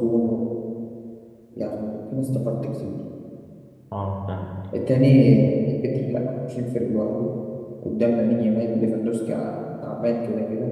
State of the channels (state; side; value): identical; both; correlation 1.00